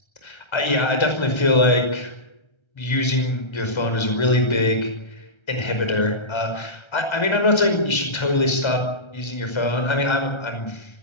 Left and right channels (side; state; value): right; late; 1.3 ms